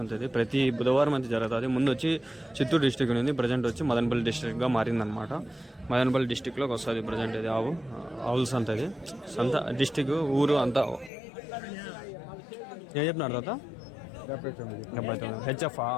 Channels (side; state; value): right; drops out; at 11.1 s